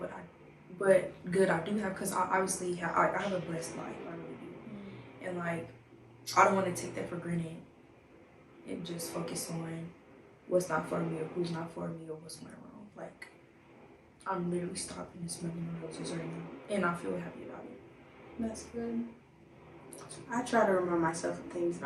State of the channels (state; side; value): identical; both; correlation 1.00